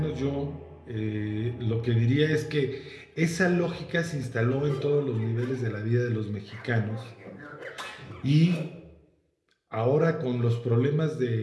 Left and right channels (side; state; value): both; identical; correlation 1.00